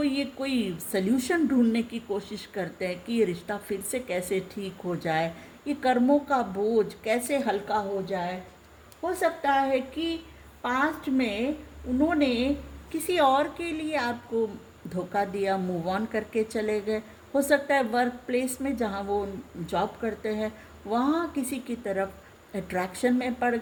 ये कोई सल्यूशन ढूंढने की कोशिश करते हैं कि ये रिश्ता फिर से कैसे ठीक हो जाए, ये कर्मों का बोझ कैसे हल्का हो जाए। हो सकता है कि पास्ट में उन्होंने किसी और के लिए आपको धोखा दिया, मूव ऑन करके चले गए। हो सकता है वर्क प्लेस में जहाँ वो जॉब करते हैं वहाँ किसी की तरफ अट्रैक्शन में पड़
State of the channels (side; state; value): both; identical; correlation 1.00